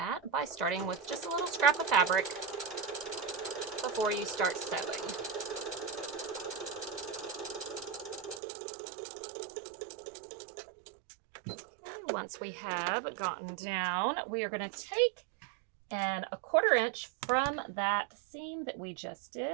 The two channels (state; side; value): drops out; left; at 8.4 s